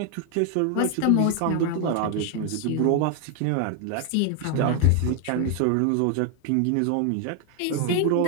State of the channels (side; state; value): both; different; correlation 0.00